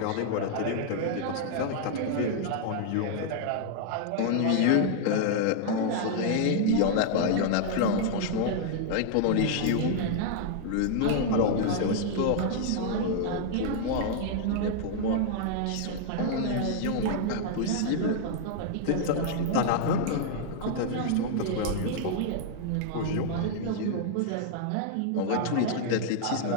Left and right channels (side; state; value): both; different; correlation -0.01